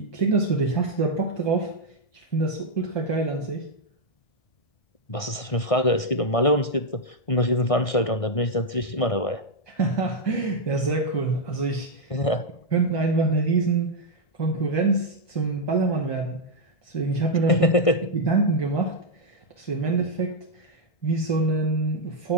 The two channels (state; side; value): late; right; 1.6 ms